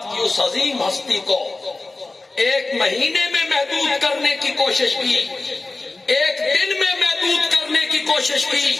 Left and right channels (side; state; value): right; quieter; 3.3 dB